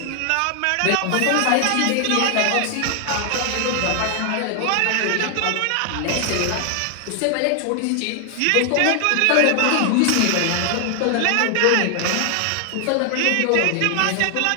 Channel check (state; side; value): different; both; correlation 0.00